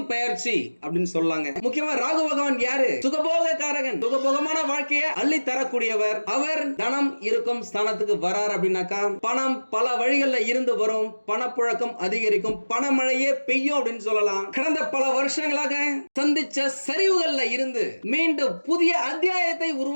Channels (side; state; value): both; inverted; correlation -1.00